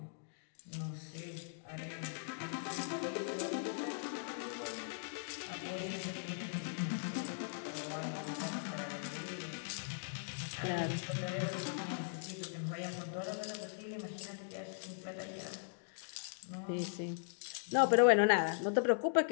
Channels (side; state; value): right; silent; digital silence